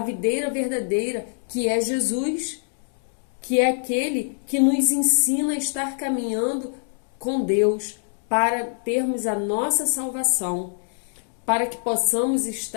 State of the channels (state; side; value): silent; right; digital silence